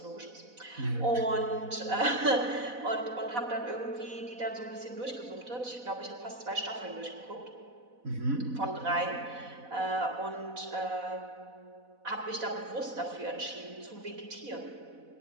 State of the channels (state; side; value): late; left; 4.0 ms